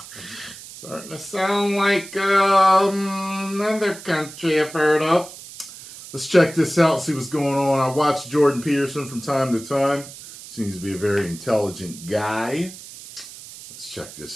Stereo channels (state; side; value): noise; right; hiss, 15 dB below the sound